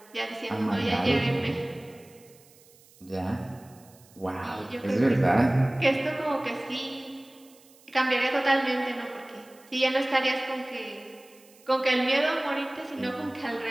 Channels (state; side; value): noise; right; hiss, 27 dB below the sound